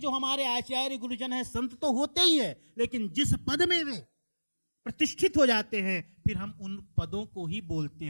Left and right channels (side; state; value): both; inverted; correlation -1.00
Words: हमारे आचार्य गुरुजन हैं, संत तो होते ही है, लेकिन जिस पद में वे प्रतिष्ठित हो जाते हैं फिर हम उन पदों को ही बोलते